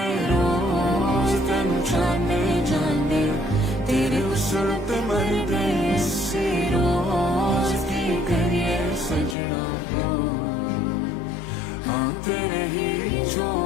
रोज तेनू जाने जाने तेरे उसल ते मर गए सी रोज की करिए सजना हो हाँ तेरे ही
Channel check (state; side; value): drops out; right; at 9.3 s